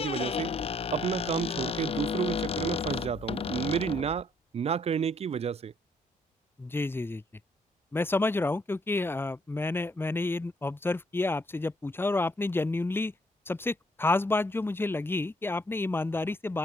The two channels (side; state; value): both; normal; correlation 0.68